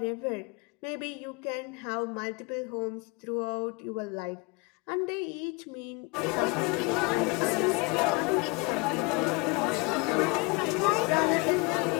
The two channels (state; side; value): quieter; right; 27.5 dB